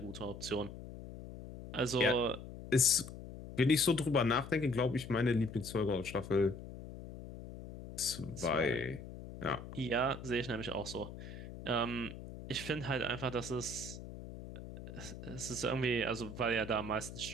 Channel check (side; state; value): left; noise; hum, 12 dB below the sound